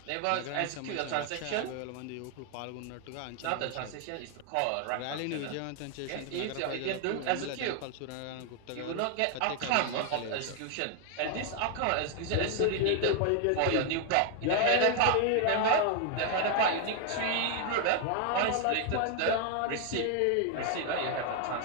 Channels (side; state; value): both; different; correlation 0.00